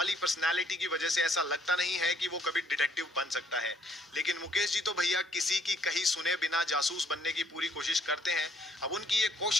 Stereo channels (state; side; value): normal; both; correlation 0.65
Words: पर्सनालिटी की वजह से ऐसा लगता नहीं है कि वो कभी डिटेक्टिव बन सकता है. लेकिन मुकेश जी तो भैया किसी की कहीं सुने बिना जासूस बनने की पूरी कोशिश करते हैं. अब उनकी ये